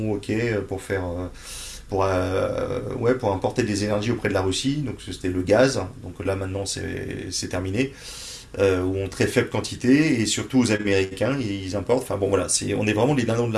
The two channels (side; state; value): both; identical; correlation 1.00